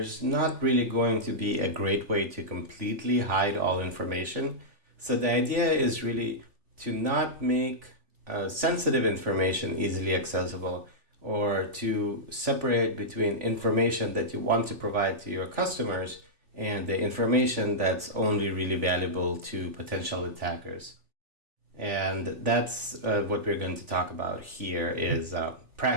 not really going to be a great way to completely hide all information. So the idea is really to not make sensitive information easily accessible, or to separate between information that you want to provide to your customers and the information that's only really valuable to potential attackers. And that's what we're going to talk about here is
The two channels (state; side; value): late; left; 3.5 ms